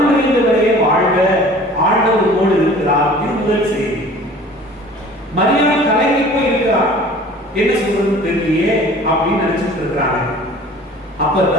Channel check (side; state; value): both; normal; correlation 0.46